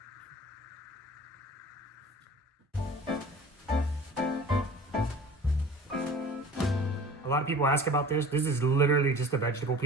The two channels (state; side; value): normal; both; correlation 0.43